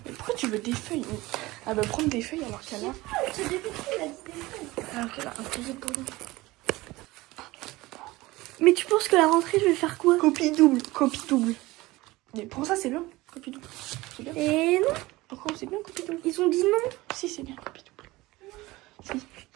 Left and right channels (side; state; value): left; quieter; 19.9 dB